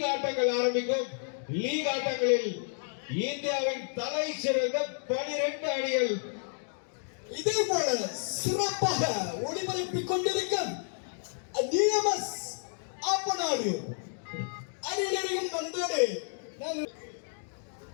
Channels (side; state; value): right; silent; digital silence